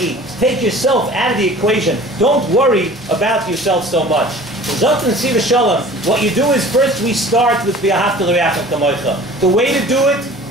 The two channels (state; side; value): normal; both; correlation 0.45